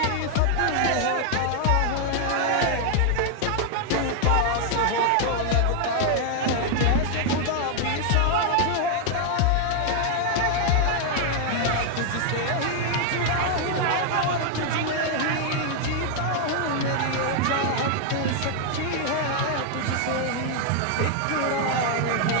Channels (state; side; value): different; both; correlation 0.00